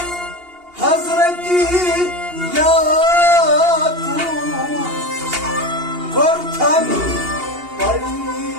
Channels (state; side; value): late; left; 2.8 ms